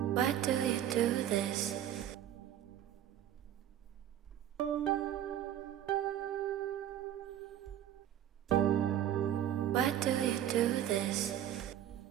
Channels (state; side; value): quieter; left; 11.1 dB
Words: do you do this? Why do you do this?